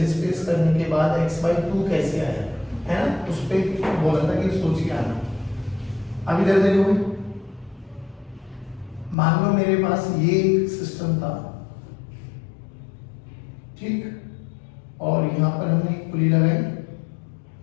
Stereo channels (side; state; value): right; drops out; at 9.2 s